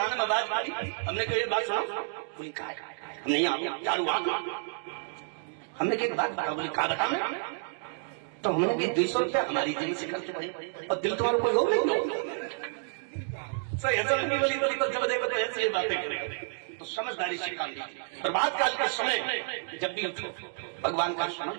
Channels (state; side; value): silent; left; digital silence